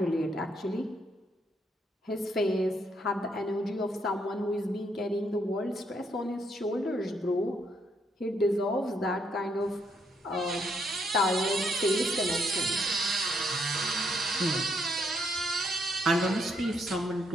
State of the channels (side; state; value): both; normal; correlation 0.74